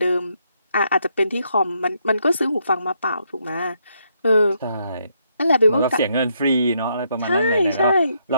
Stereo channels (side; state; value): both; inverted; correlation -0.76